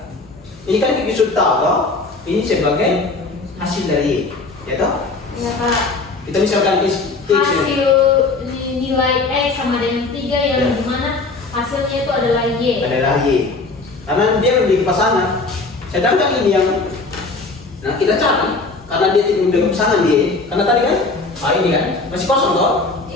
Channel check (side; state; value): right; quieter; 3.7 dB